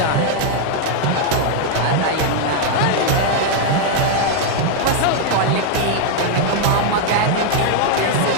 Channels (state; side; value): different; both; correlation 0.00